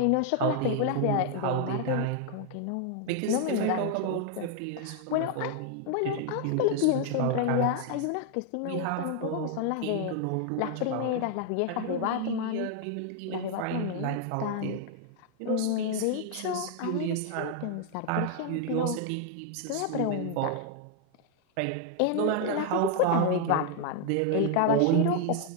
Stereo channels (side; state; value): both; different; correlation 0.00